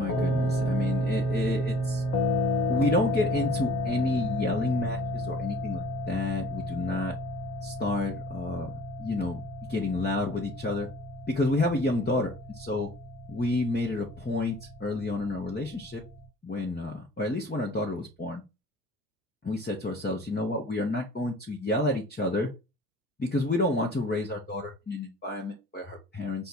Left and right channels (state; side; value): normal; both; correlation 0.49